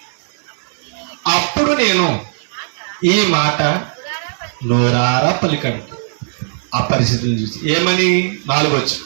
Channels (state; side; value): silent; left; digital silence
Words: అప్పుడు నేను ఈ మాట నోరారా పలికాడు. ఆ పరిస్థితిని చూసి ఏమని 4 వచ్చు,